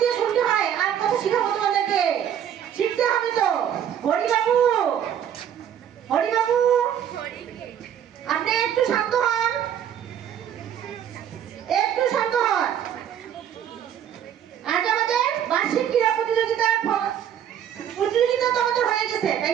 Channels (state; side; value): quieter; left; 9.5 dB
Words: দিয়ে শুনতে হয়। আর কথা শিখাবো তোমাদেরকে, শিখতে হবে তো। হরিবাবু, হরিবাবু, আপনি একটু শান্ত হন, একটু শান্ত হন। আজ আমাদের বার্ষিক ক্রীড়া প্রতিযোগিতা তো আমাদের হয়ে গেছে, তাই